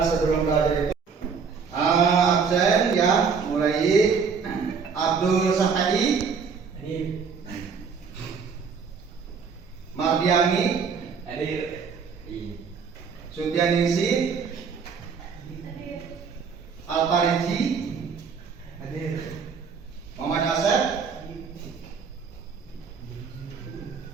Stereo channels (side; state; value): left; quieter; 5.8 dB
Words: sebelum belajar itu absen ya, mulai Abdul Safai, Mardiani, Sutianingsi, Alpariji, Muhammad Asep,